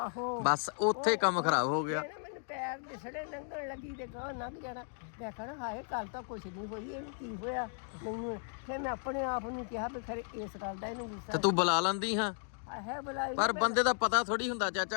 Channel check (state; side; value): silent; right; 54 dB below the other